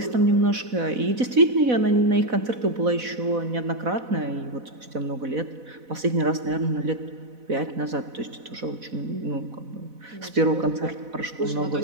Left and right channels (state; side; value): late; left; 4.1 ms